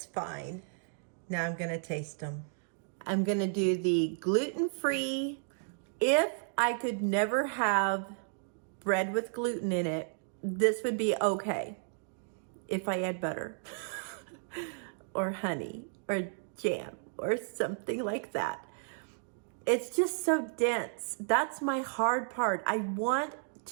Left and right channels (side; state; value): left; silent; digital silence